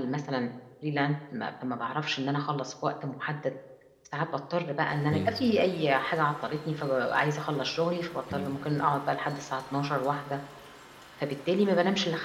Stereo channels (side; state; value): both; identical; correlation 1.00